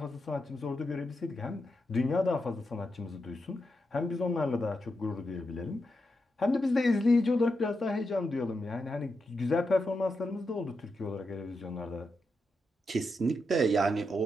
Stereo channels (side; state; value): both; normal; correlation 0.86